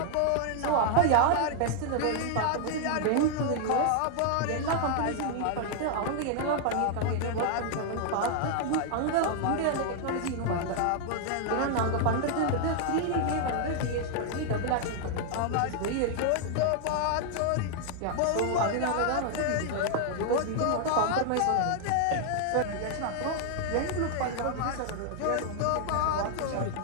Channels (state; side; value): different; both; correlation 0.00